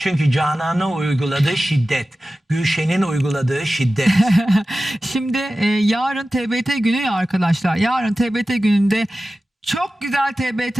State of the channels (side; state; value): both; normal; correlation 0.95